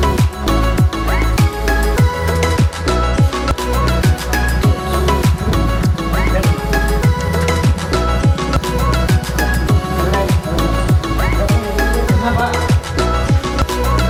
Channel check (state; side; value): identical; both; correlation 1.00